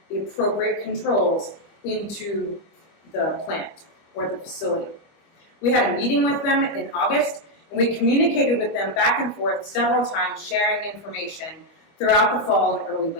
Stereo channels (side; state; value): right; late; 25 ms